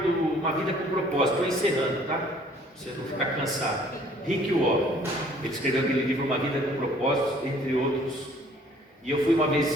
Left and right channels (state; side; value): normal; both; correlation 0.57